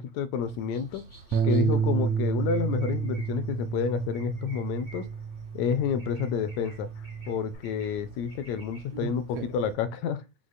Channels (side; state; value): right; late; 9.1 ms